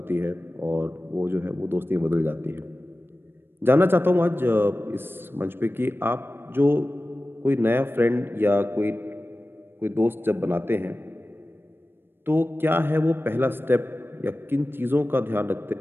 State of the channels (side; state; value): left; late; 0.10 ms